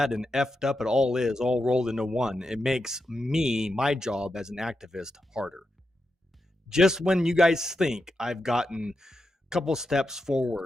and effed up it all is, all rolled into one, it makes my job as an activist harder. Just when you guys think I've gotten a couple steps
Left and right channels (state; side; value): normal; both; correlation 0.87